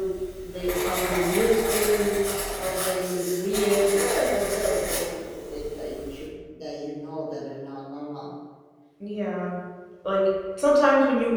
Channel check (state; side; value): identical; both; correlation 1.00